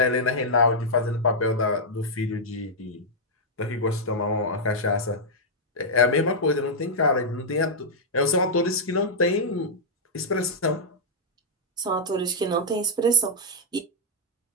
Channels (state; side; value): normal; both; correlation -0.06